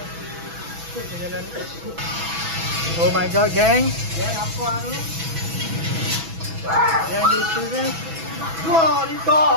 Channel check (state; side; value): late; left; 6.1 ms